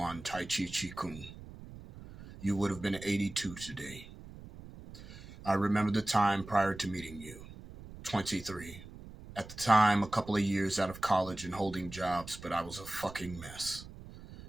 Tai Chi Chi Kung. You would have been 82 today. I remember the time prior to meeting you, 23. At the time, a couple of years out of college and holding jobs, but I was a fucking mess.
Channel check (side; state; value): right; noise; rumble, 15 dB below the sound